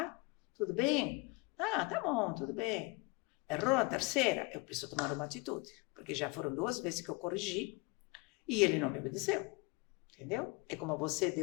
Tudo bem? Ah, tá bom, tudo bem. Errou na terceira? Eu preciso tomar uma atitude. Porque já foram 2 vezes que eu corrigi e ele não me obedeceu. Entendeu? É como você,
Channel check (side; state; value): right; quieter; 26.5 dB